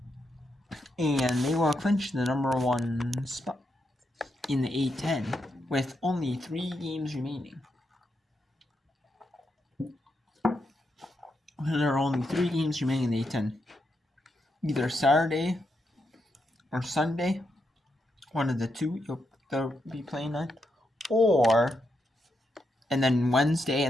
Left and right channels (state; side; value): normal; both; correlation 0.83